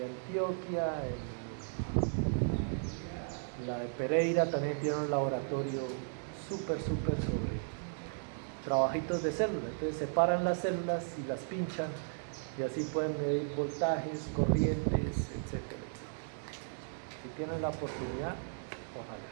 Antioquia, en la de Pereira también tiene un laboratorio súper sobre trabajitos de células. Entonces separan las células y las pinchan y así pueden medir voltajes, corrientes, etc. Si tienen la oportunidad, ojalá.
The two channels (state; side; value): silent; left; digital silence